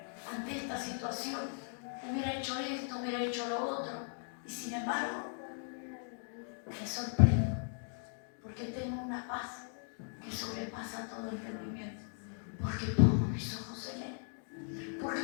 ante esta situación, hubiera hecho esto, hubiera hecho lo otro, y sin embargo me sorprendo porque tengo una paz que sobrepasa todo entendimiento, porque pongo mis ojos en Él. Porque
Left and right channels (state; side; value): silent; right; 53 dB below the other